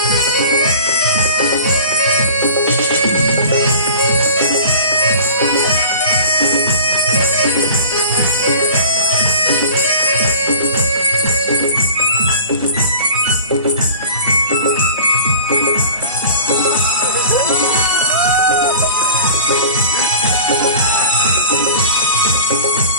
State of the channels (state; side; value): inverted; both; correlation -0.40